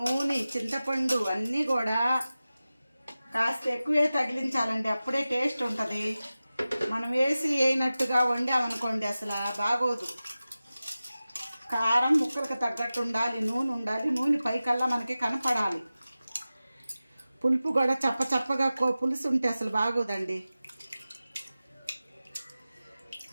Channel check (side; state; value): both; inverted; correlation -0.96